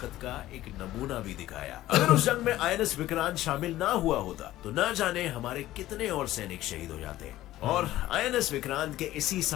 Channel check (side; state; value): right; quieter; 15.1 dB